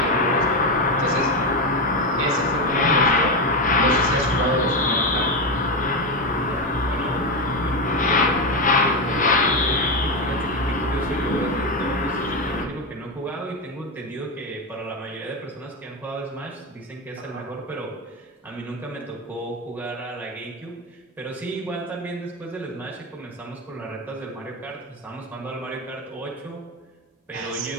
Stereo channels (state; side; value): normal; both; correlation 0.12